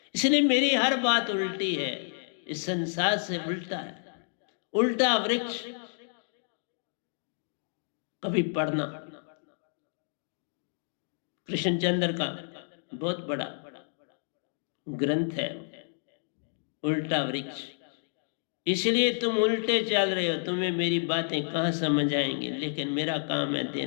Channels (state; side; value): silent; right; digital silence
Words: इसलिए मेरी हर बात उल्टी है, इस संसार से उल्टा है। उल्टा वृक्ष कभी पढ़ना, कृष्णचंद्र का बहुत बड़ा ग्रंथ है उल्टा वृक्ष। इसलिए तुम उल्टे चल रहे हो, तुम्हें मेरी बातें कहां समझ आएंगी, लेकिन मेरा काम है